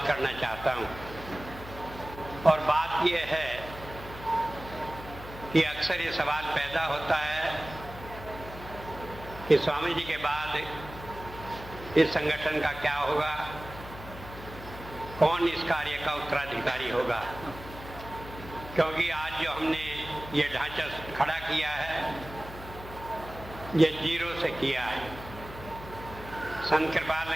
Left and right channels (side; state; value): left; noise; hum, 14 dB below the sound